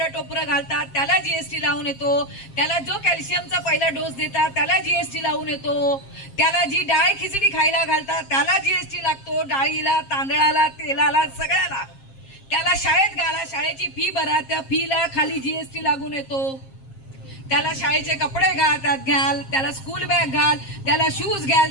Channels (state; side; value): late; right; 7.5 ms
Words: टोपरं घालतात त्याला जीएसटी लावून येतो. त्याला जो कॅल्शियमचा पहिला डोस देतात त्याला जीएसटी लावून येतो. त्याला जी डाळ खिचडी खायला घालतात त्याला जीएसटी लागतो, डाळीला, तांदळाला, तेलाला, सगळ्याला. त्याला शाळेत घाला, शाळेची फी भरा, त्या फीला खाली जीएसटी लागून येतो. त्याला शाळेचे कपडे घ्याल, त्याला स्कूल बॅग घाल, त्याला शूज